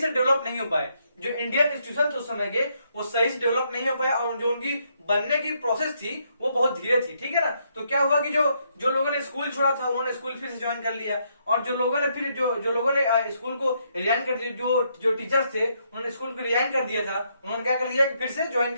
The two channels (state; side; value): inverted; both; correlation -0.75